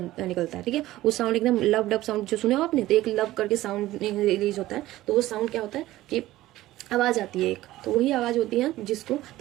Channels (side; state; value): left; quieter; 16.0 dB